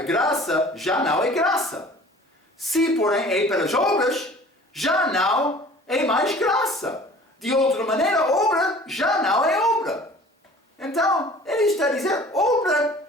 graça já não é graça. Se, porém, é pelas obras, já não é mais graça. De outra maneira, obra já não é obra. Então, ele está a dizer,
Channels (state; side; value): normal; both; correlation 0.47